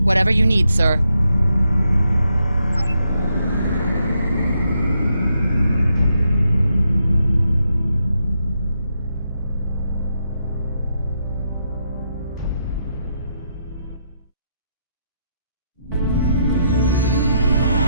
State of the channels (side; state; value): both; inverted; correlation -0.79